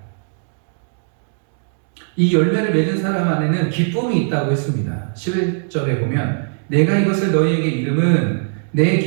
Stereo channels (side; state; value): left; silent; digital silence